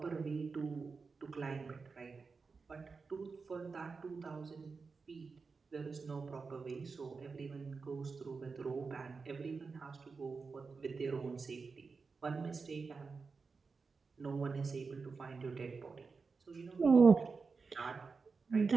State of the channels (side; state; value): left; quieter; 4.7 dB